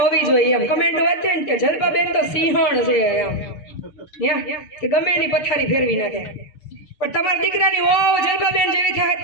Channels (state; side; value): late; right; 6.5 ms